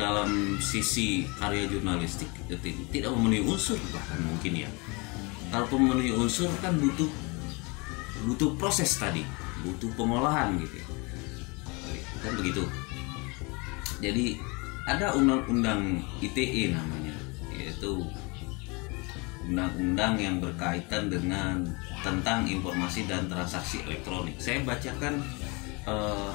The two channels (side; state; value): right; quieter; 28.8 dB